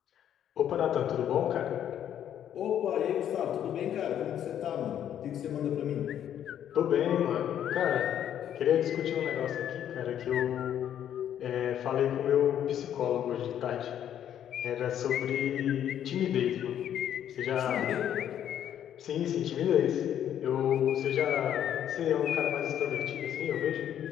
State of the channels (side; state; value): right; quieter; 10.2 dB